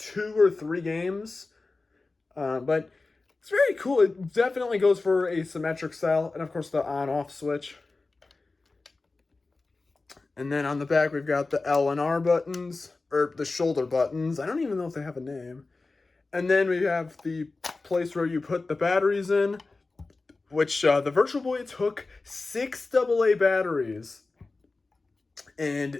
or 3 games. But it's very cool. It definitely goes for a symmetric style, and of course the on-off switch. And then on the back, we've got the L and R buttons, or the shoulder buttons. I don't even know if they have a name. And then we have the place where you put the batteries in, which the Virtual Boy took 6 AA batteries.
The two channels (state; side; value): quieter; right; 3.6 dB